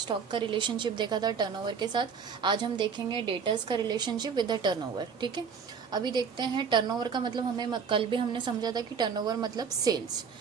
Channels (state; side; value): quieter; left; 6.3 dB